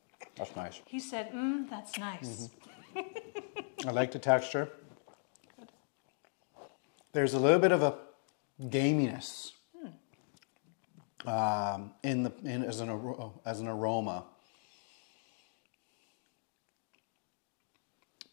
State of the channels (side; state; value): right; silent; digital silence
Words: That's nice. He said, that's nice. Mm-hmm. I like the texture. There's a little bit of a gaminess as an aroma.